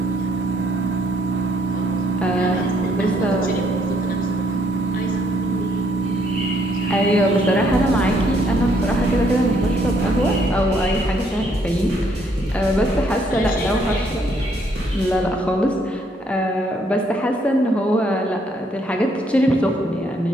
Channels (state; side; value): normal; both; correlation 0.69